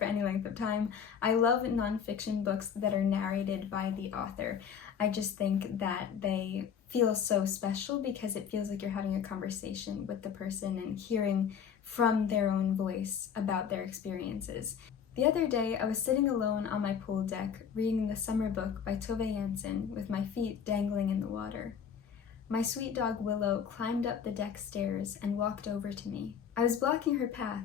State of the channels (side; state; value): right; quieter; 7.5 dB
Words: any length of time, I love nonfiction books that are narrated by the author. I just think that they feel so special because it feels like you're having a conversation with the person and hearing from their own voice about their experiences. The other day, I was sitting alone on my pool deck reading the summer book by Tove Jansson with my feet dangling in the water. My sweet dog Willow climbed up the deck stairs and walked over to me. I was blocking her path,